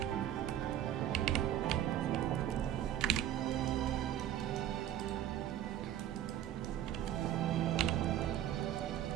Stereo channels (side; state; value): left; quieter; 11.5 dB